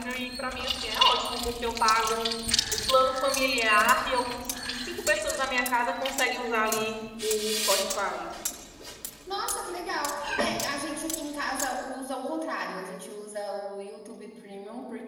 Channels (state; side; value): identical; both; correlation 1.00